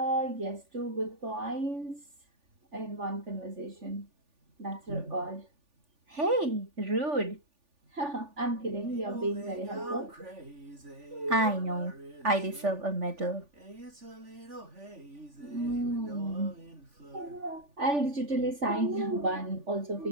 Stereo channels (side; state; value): left; late; 3.4 ms